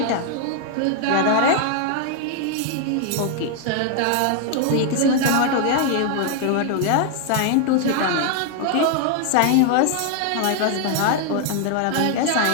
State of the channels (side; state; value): both; different; correlation 0.00